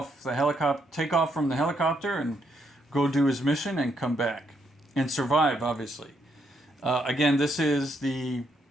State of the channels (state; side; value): normal; both; correlation 0.76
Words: from the helicopter and go do his mission and come back and survive, obviously. Again, this is the